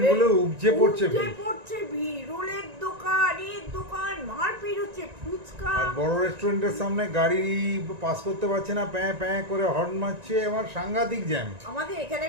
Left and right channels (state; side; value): late; left; 1.9 ms